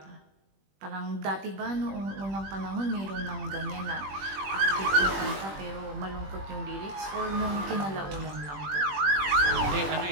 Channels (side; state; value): left; late; 21 ms